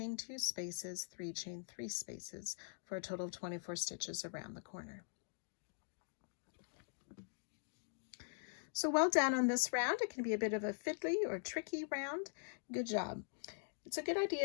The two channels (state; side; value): silent; right; digital silence